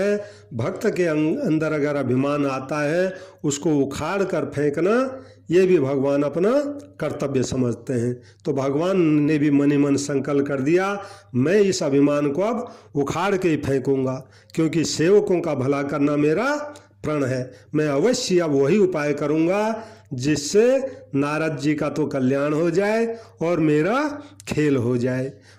भक्त के अंदर अगर अभिमान आता है, उसको उखाड़ कर फेंकना, ये भी भगवान अपना कर्तव्य समझते हैं। तो भगवान ने भी मन ही मन संकल्प कर दिया, मैं इस अभिमान को अब उखाड़ के ही फेंकूंगा, क्योंकि सेवकों का भला करना मेरा प्रण है। मैं अवश्य अब वही उपाय करूंगा जिससे नारद जी का तो कल्याण हो जाए और मेरा खेल हो जाए।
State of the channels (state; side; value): identical; both; correlation 1.00